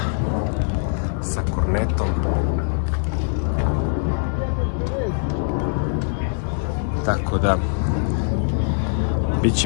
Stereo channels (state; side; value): silent; right; digital silence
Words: kornetom. Tako da,